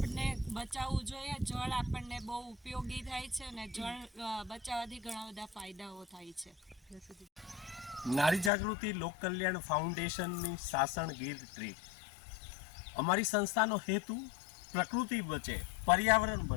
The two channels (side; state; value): right; drops out; at 8.5 s